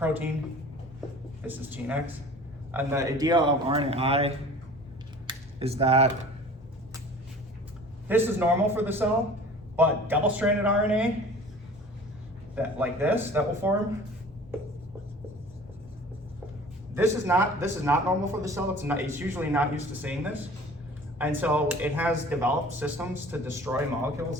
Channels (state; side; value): normal; both; correlation 0.44